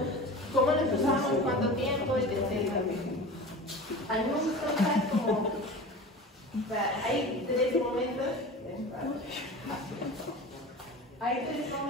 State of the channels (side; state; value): both; normal; correlation 0.34